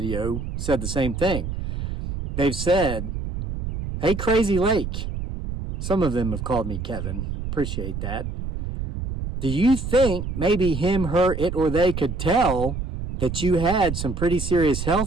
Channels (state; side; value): noise; right; rumble, 5 dB below the sound